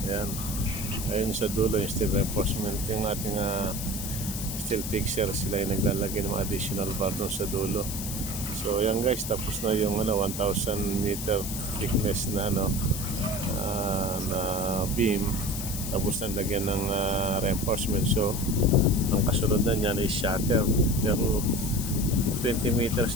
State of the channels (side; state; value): left; noise; hiss, 7 dB below the sound